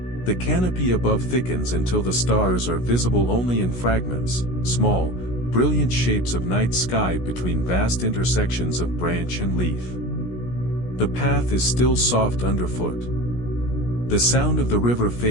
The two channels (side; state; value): right; late; 16 ms